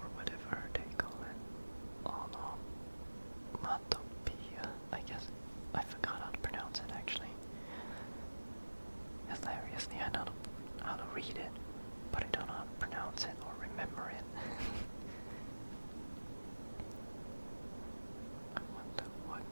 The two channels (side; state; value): both; inverted; correlation -1.00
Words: whatever they call it. Oh no. Matopia, I guess. I forgot how to pronounce it actually. Hilariously, I know how to read it, but I don't know how to pronounce it or remember it. I wonder what